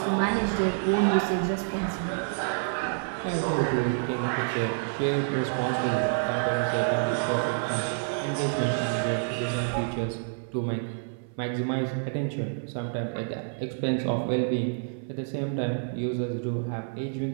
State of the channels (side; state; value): left; silent; 57 dB below the other